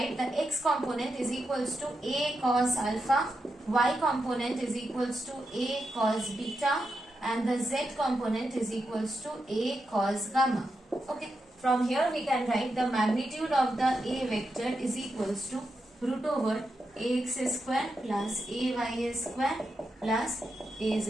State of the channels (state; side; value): normal; both; correlation 0.86